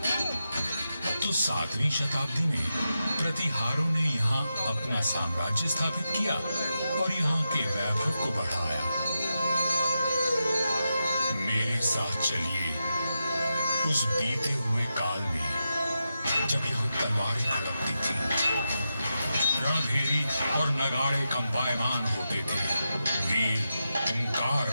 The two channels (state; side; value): inverted; both; correlation -0.88